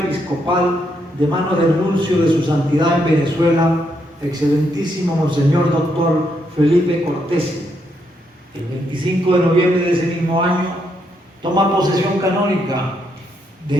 de manos del nuncio de su santidad en Venezuela, excelentísimo Monseñor Dr. Felipe Cortés. El 25 de noviembre de ese mismo año toma posesión canónica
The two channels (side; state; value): both; normal; correlation 0.77